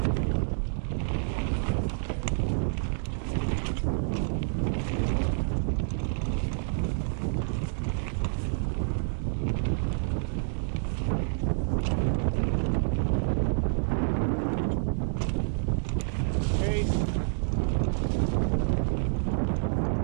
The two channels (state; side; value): silent; left; digital silence